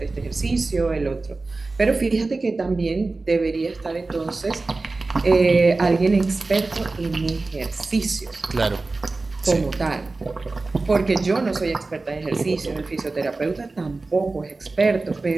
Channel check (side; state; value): left; quieter; 3.5 dB